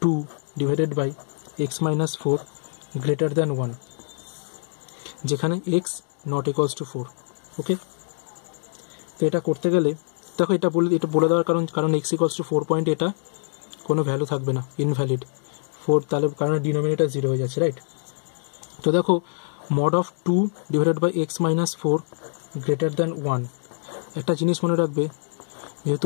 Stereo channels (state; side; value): silent; right; digital silence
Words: 2 divided by x minus 4 greater than 1, যেখানে x not equals to 4। ওকে, তো এটা করতে গেলে দেখো এটা বলে দেওয়ার কারণ x equals to 4 পয়েন্ট, এটা কোনো ভ্যালু থাকবে না, ইনভ্যালিড 4, তাহলে কারণ ডিনোমিনেটর 0 হয়ে যাচ্ছে, রাইট। তো দেখো mod of 2 divided by x minus 4 greater than 1, একটা জিনিস মনে রাখবে,